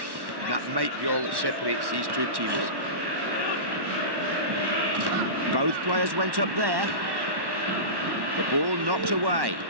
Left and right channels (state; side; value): late; left; 1.1 ms